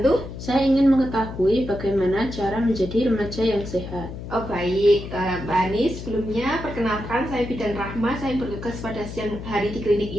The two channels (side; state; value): left; noise; hum, 10 dB below the sound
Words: Saya ingin mengetahui bagaimana cara menjadi remaja yang sehat. Oh baik, Mbak Hani, sebelumnya perkenalkan saya Bidan Rahma, saya bertugas pada siang hari di klinik